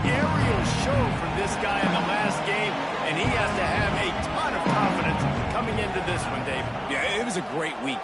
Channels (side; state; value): both; identical; correlation 1.00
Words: aerial show from this guy in the last game, and he has to have a ton of confidence coming into this one, Dave. Yeah, it was a great week.